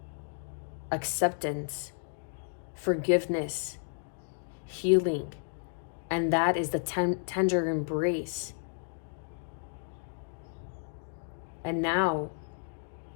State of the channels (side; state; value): right; silent; digital silence